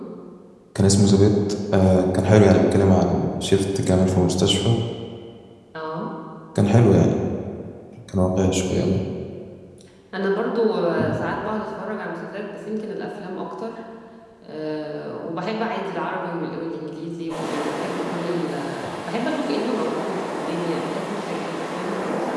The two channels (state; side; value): identical; both; correlation 1.00